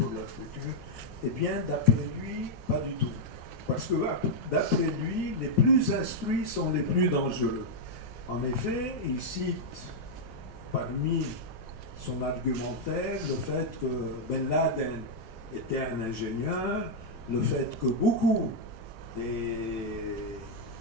leur futur. Eh bien, d'après lui, pas du tout. Parce que d'après lui, les plus instruits sont les plus dangereux. En effet, il cite parmi son argumentaire le fait que Ben Laden était un ingénieur, le fait que beaucoup des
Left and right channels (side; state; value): both; normal; correlation -0.04